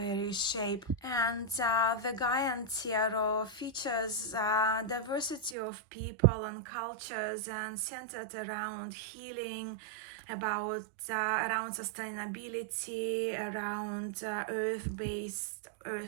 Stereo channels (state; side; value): drops out; left; at 5.6 s